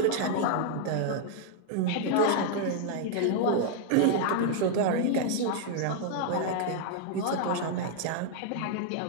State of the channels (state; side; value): different; both; correlation -0.01